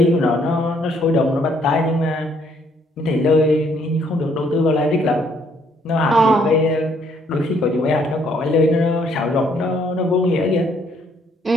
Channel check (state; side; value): normal; both; correlation 0.67